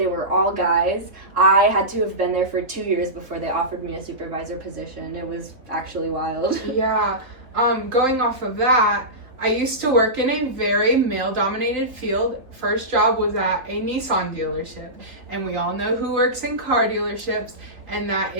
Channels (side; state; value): left; late; 3.9 ms